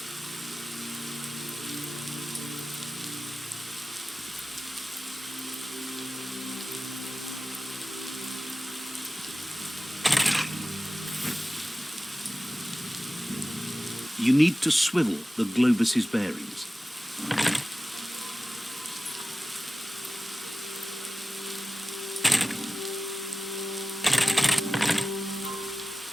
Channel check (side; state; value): both; normal; correlation 0.96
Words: You need to swivel the globus's bearings.